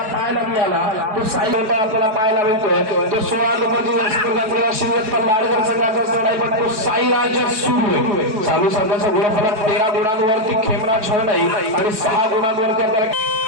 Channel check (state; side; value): late; left; 4.8 ms